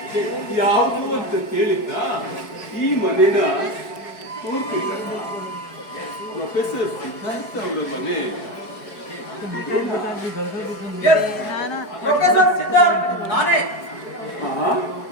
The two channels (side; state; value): right; late; 4.7 ms